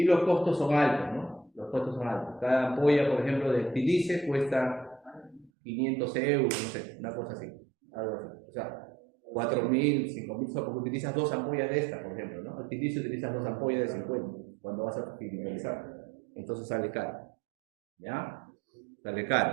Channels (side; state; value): left; drops out; at 5.5 s